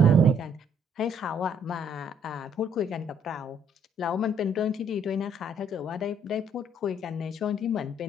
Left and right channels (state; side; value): normal; both; correlation 0.65